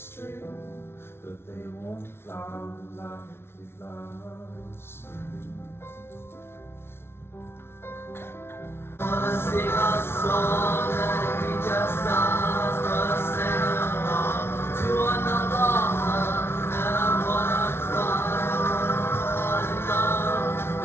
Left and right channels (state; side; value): late; right; 0.12 ms